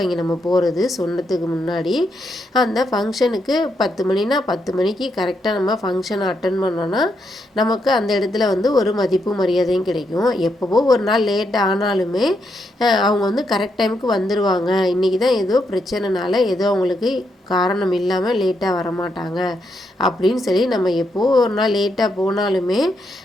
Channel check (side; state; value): both; normal; correlation 0.80